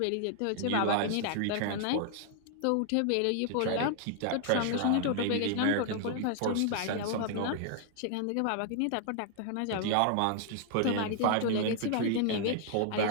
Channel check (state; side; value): different; both; correlation 0.00